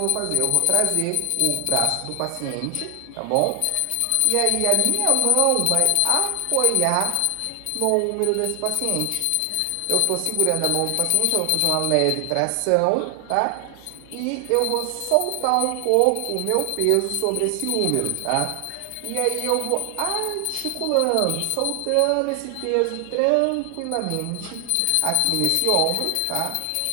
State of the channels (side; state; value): both; different; correlation 0.00